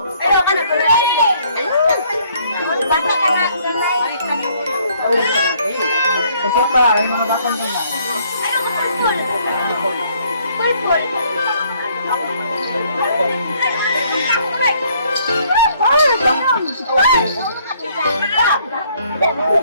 Ayaw ka na. Bata ka na. Isa pa, yung mga batang gamay. Ayaw ka na. Purple.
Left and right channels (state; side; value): inverted; both; correlation -0.64